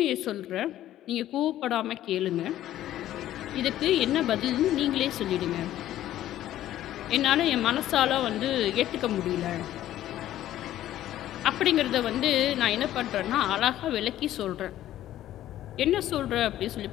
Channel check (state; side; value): quieter; right; 13.1 dB